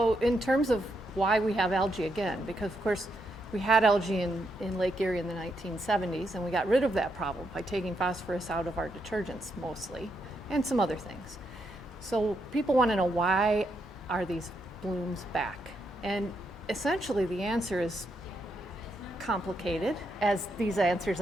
in terms of why we have algae again, because of course we had algae in Lake Erie in the 1970s, and we got rid of that problem by taking phosphorus out of our detergents mostly, and some other things. So people want to know, why are these blooms back? And essentially the answer is complicated, as these answers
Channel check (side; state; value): both; normal; correlation 0.80